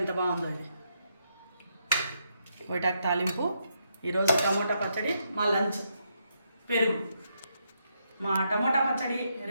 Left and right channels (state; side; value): inverted; both; correlation -0.79